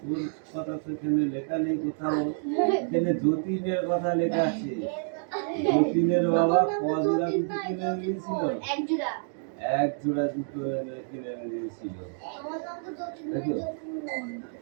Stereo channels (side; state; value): left; silent; digital silence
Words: কথা তো এখানে লেখা নেই কোথাও। এখানে যতীনের কথা লেখা আছে। যতীনের বাবা কজোড়া জুতো কিনে দিয়েছিল? 1 জোড়া। 1 জোড়া জুতো কিনে দিয়েছিল। দেখো